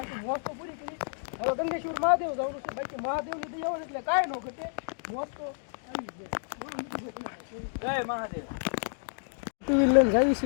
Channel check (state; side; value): silent; right; digital silence